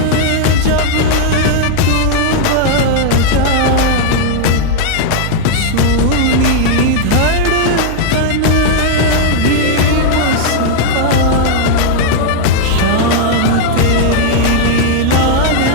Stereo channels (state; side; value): different; both; correlation -0.01